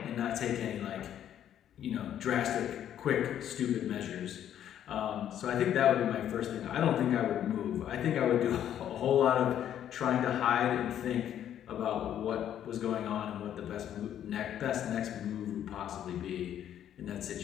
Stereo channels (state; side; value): quieter; right; 10.4 dB